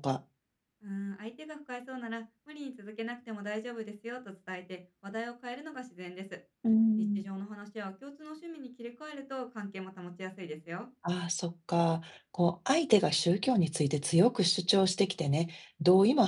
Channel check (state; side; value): identical; both; correlation 1.00